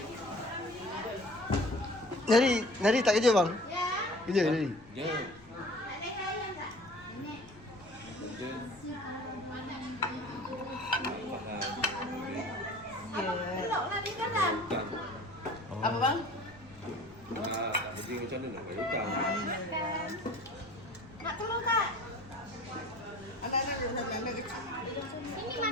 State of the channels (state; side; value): noise; left; rumble, 22 dB below the sound